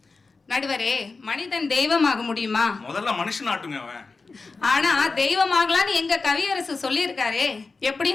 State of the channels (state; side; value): quieter; right; 4.1 dB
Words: நடுவரே, மனிதன் தெய்வமாக முடியுமா? முதல்ல மனுஷன் ஆட்டுங்க அவன். ஆனா தெய்வமாகலான்னு எங்க கவியரசு சொல்லியிருக்காரே.